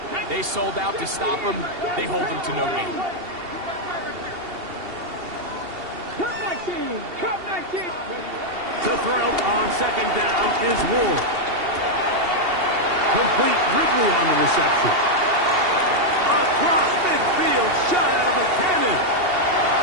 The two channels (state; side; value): late; left; 2.8 ms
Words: They sold out to stop him. They hold him to no gain. Cup 19. To throw on second down is Ward. Complete Ridley on the reception. Across midfield, shot out of a cannon.